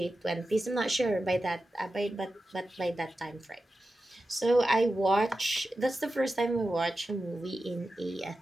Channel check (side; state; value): both; normal; correlation 0.92